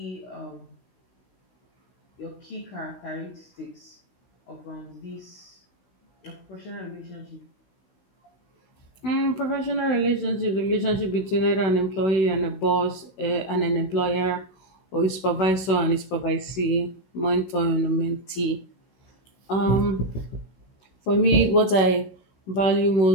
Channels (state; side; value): late; right; 16 ms